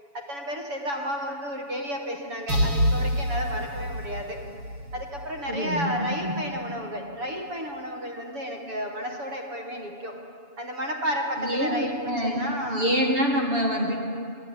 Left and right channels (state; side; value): late; left; 7.1 ms